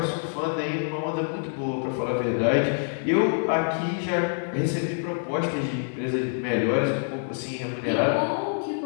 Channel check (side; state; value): right; silent; digital silence